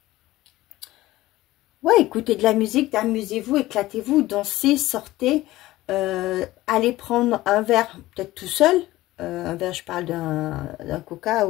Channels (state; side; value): quieter; right; 17.2 dB